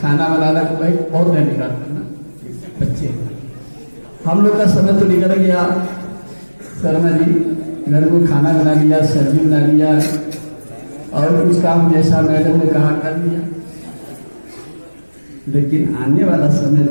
खाना बनाना को, भाई बहुत नहीं निकालता ना बच्चे, हम लोग का समय तो निकल गया। शर्मा जी घर को खाना बना लिया, सब्जी बना लिया और कुछ काम जैसा मैडम ने कहा कर लिया। लेकिन आने वाला समय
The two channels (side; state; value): both; inverted; correlation -1.00